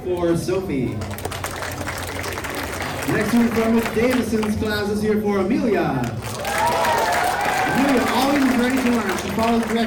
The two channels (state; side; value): identical; both; correlation 1.00